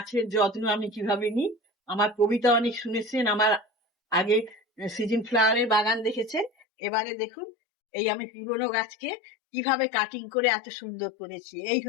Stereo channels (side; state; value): right; drops out; at 6.5 s